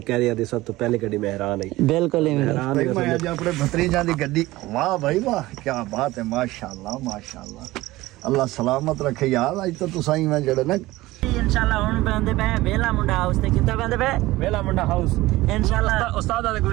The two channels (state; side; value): quieter; left; 18.4 dB